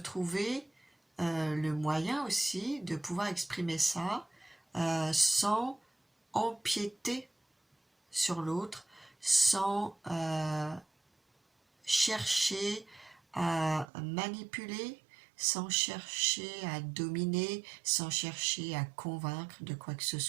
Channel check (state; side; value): drops out; left; at 13.9 s